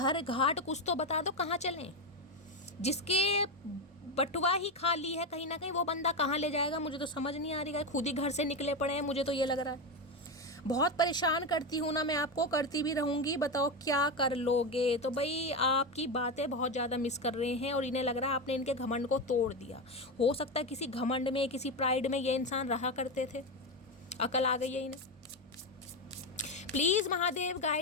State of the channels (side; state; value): both; normal; correlation 0.13